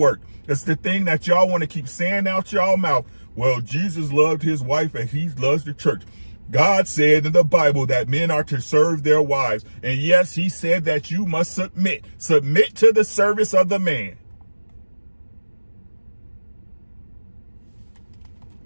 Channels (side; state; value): both; inverted; correlation -1.00